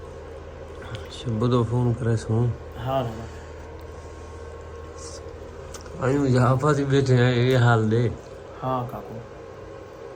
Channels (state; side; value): identical; both; correlation 1.00